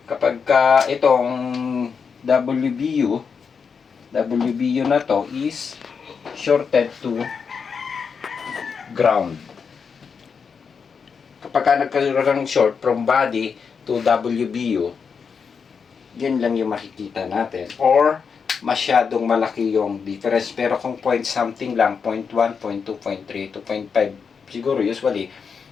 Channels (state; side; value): quieter; right; 6.0 dB